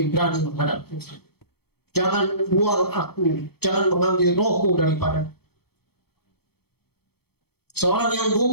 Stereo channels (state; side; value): late; right; 0.96 ms